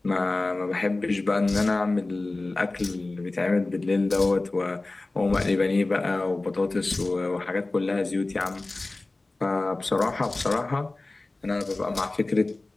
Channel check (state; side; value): quieter; right; 3.1 dB